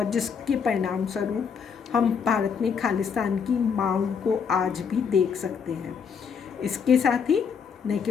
जिसके परिणाम स्वरूप हम भारत में खालिस्तान की मांग को आज भी देख सकते हैं। इसके साथ ही न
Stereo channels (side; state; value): right; quieter; 6.5 dB